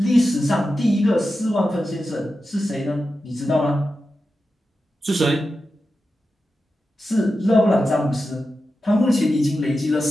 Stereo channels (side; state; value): both; normal; correlation 0.91